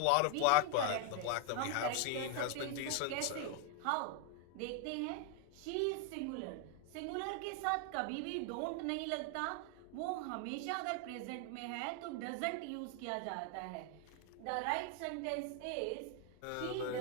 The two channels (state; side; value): different; both; correlation 0.01